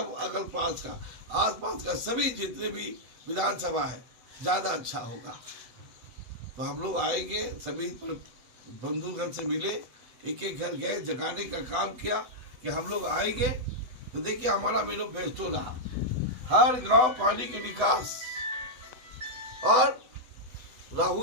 अगल पास का आसपास का सभी जितने भी विधानसभा है ज़्यादा अच्छा होगा। तो हम लोग आएंगे, सभी बंधुगण से मिले, एक एक घर गए, जगाने का काम किया कि हम लोग आएंगे। तो देखिए हमारा मैनिफेस्टो रहा, हर गांव पानी के निकास और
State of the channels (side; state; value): left; late; 8.0 ms